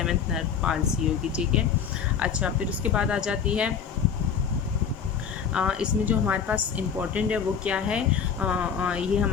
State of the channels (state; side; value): quieter; right; 7.1 dB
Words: नर्व पालसी होगी, ठीक है। अच्छा, फिर उसके बाद आ जाती है इसमें जो हमारे पास इम्पॉर्टेंट है वो क्या है? ये